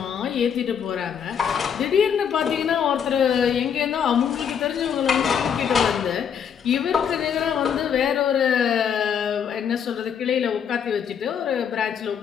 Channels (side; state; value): right; quieter; 7.8 dB